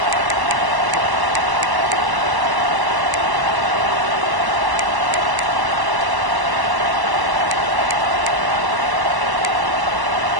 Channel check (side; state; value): left; late; 1.1 ms